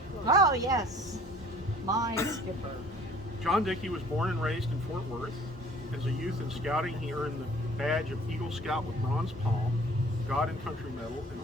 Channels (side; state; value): both; normal; correlation 0.52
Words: Oh, yes. My skipper. John Dickey was born and raised in Fort Worth. As a youth in scouting, he earned the badge of Eagle Scout with Bronze Palm, God and Country Medal, and